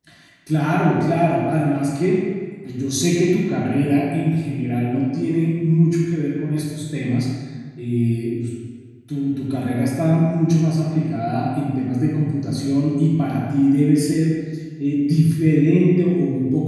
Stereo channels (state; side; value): identical; both; correlation 1.00